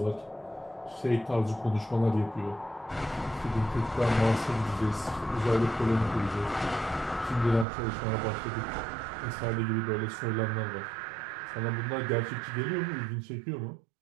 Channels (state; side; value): drops out; left; at 7.7 s